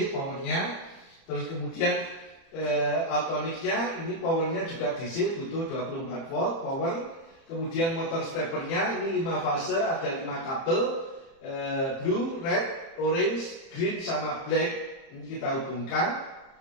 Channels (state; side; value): late; right; 30 ms